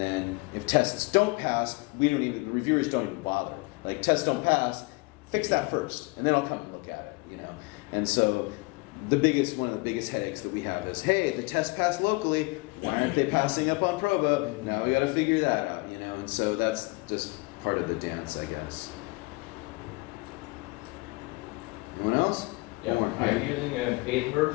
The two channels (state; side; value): quieter; right; 26.3 dB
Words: if tests don't pass, the reviewers don't even bother. Like, tests don't pass, fix that first, and then I'll come and look at it, And so one of the biggest headaches that we have is, hey, the test passed locally, why aren't they passing up on Probo? Now we got to figure that out, And so that's just part of the dance, I guess. Anyone else? Yeah, are you using a paid